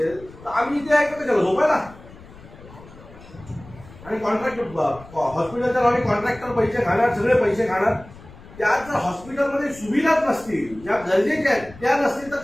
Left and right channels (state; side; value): noise; left; rumble, 20 dB below the sound